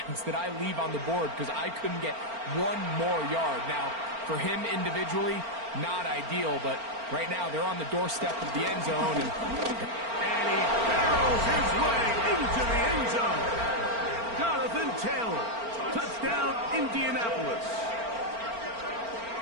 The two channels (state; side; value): late; left; 4.4 ms